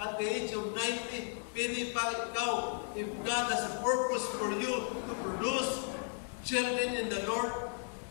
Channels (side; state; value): right; silent; 54 dB below the other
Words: at the age of 90. Pwede pa ikaw, if God has a purpose for you to produce children in the Lord